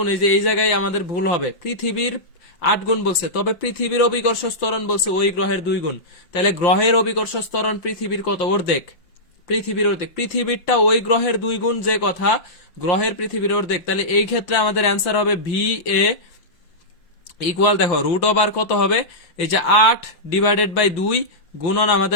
এই যে এই জায়গায় আমাদের ভুল হবে, পৃথিবীর 8 গুণ বলছে, তবে পৃথিবীর অভিকর্ষজ ত্বরণ বলছে ওই গ্রহের 2 গুণ। তাহলে গ্রহের অভিকর্ষজ ত্বরণ পৃথিবীর কত? অর্ধেক। পৃথিবীর অর্ধেক, পৃথিবীরটা ওই গ্রহের 2 গুণ যে কথা, গ্রহের পৃথিবীর অর্ধেক। তাহলে এই ক্ষেত্রে আমাদের অ্যান্সার হবে ভি এ ইকুয়াল, দেখো রুট ওভার কত হবে? এই যে 8 ডিভাইডেড বাই 2 গুণন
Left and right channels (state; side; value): late; right; 5.8 ms